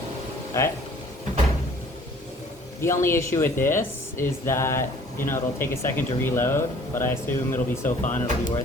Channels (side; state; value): both; normal; correlation 0.54